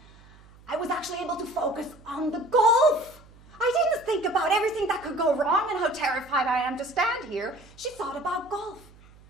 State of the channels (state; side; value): noise; right; hum, 24 dB below the sound